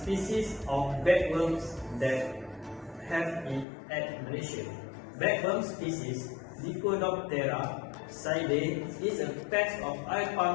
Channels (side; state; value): right; drops out; at 3.7 s